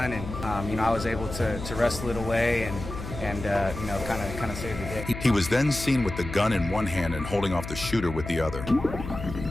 and I was able to wrestle it away and kind of save the day. He was then seen with the gun in one hand and holding off the shooter with the other.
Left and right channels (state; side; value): noise; left; hum, 9 dB below the sound